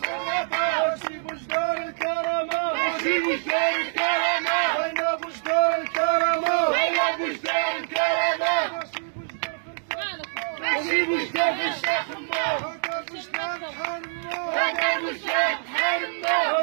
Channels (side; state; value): left; silent; digital silence